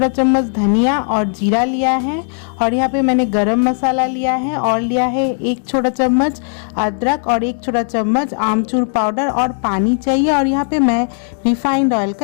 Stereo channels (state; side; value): silent; right; digital silence